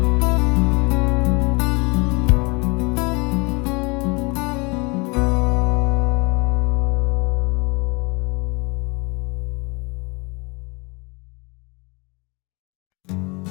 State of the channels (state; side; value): quieter; right; 28.9 dB